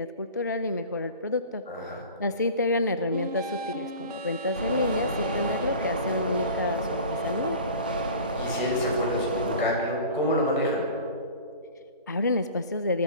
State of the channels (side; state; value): both; inverted; correlation -0.39